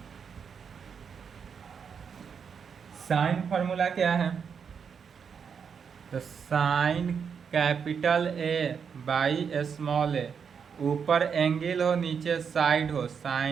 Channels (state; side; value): quieter; left; 6.7 dB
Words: साइन फॉर्मूला क्या है, तो sine capital A by small A, ऊपर एंगल हो नीचे साइड हो,